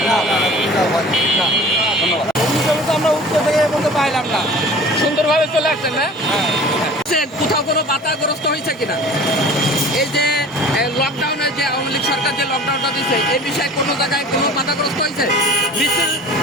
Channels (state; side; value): normal; both; correlation 0.43